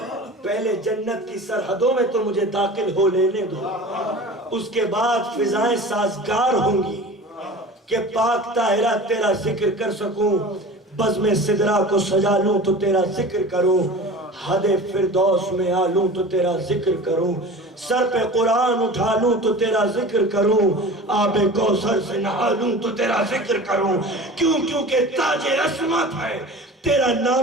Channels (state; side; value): normal; both; correlation 0.37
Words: پہلے جنت کی سرحدوں میں تو مجھے داخل ہو لینے دو، اس کے بعد فضائیں سازگار ہوں گی کہ پاک طاہرہ تیرا ذکر کر سکوں. بزم سدرہ کو سجا لوں تو تیرا ذکر کروں، حد فردوس میں آلوں تو تیرا ذکر کروں. سر پہ قرآن اٹھا لوں تو تیرا ذکر کروں، آب کوثر سے نہا لوں تو تیرا ذکر کروں. کیونکہ تاج عصمت ہے تیرا